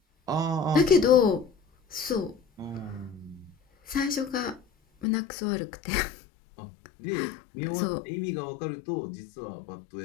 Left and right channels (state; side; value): drops out; right; at 5.1 s